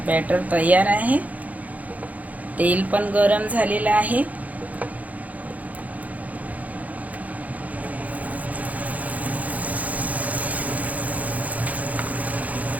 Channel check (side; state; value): left; late; 0.075 ms